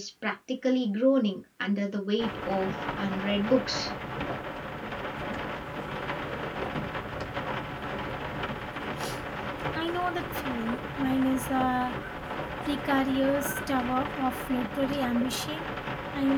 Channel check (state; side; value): identical; both; correlation 1.00